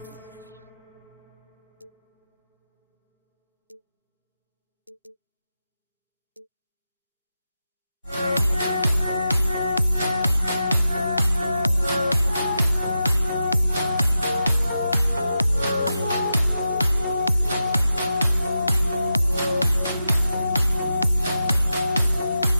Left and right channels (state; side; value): inverted; both; correlation -0.89